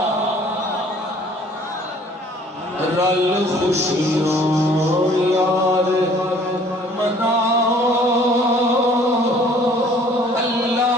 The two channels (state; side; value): normal; both; correlation 0.55